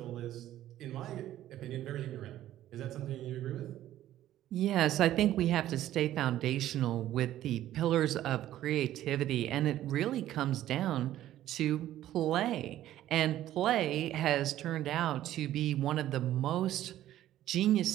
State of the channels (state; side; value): quieter; left; 13.1 dB